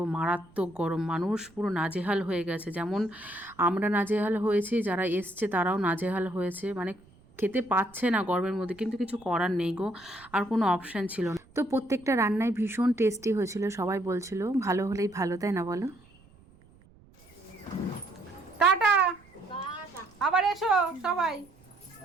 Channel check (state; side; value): noise; right; rumble, 27 dB below the sound